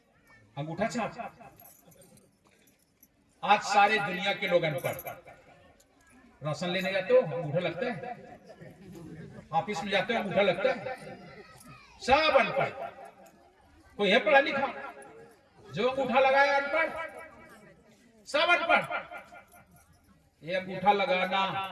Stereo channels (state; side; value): identical; both; correlation 1.00